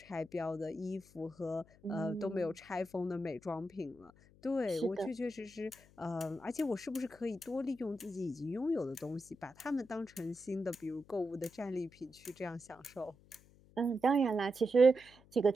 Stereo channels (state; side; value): noise; left; hum, 26 dB below the sound